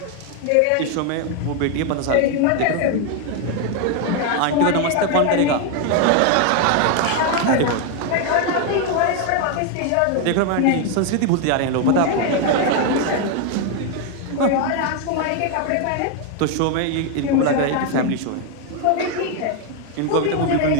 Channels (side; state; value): both; different; correlation 0.01